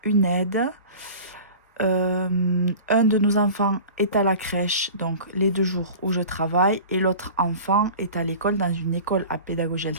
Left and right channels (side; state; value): both; inverted; correlation -0.38